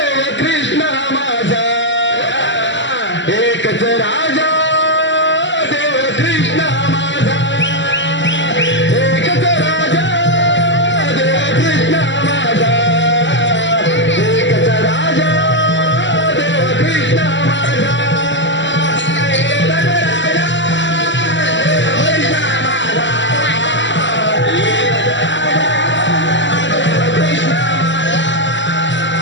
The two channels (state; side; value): late; right; 0.54 ms